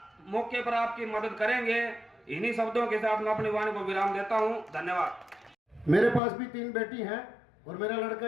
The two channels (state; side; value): drops out; right; at 6.2 s